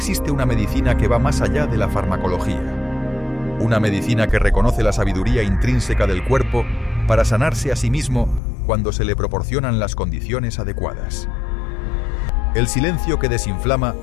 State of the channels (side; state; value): right; drops out; at 8.4 s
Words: una medicina que va más allá de la farmacología. Una medicina que reconoce la sabiduría intrínseca del cuerpo para sanarse a sí mismo cuando se le proporcionan las condiciones adecuadas. El silencio que desinflama